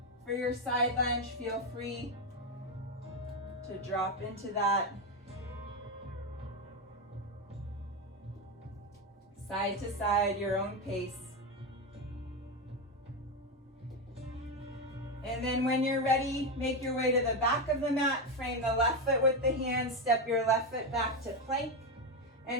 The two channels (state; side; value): normal; both; correlation 0.10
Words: for your side lunge, feel free to drop into that. Side to side, your own pace. And then when you're ready, make your way to the back of the mat, frame the left foot with the hands, step your left foot back to plank,